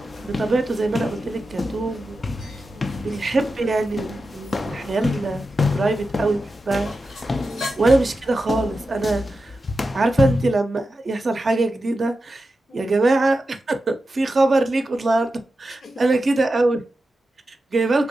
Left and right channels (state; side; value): normal; both; correlation 0.91